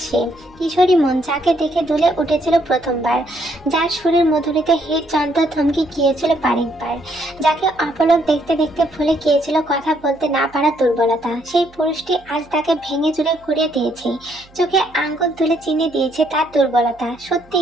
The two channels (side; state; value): right; noise; hum, 27 dB below the sound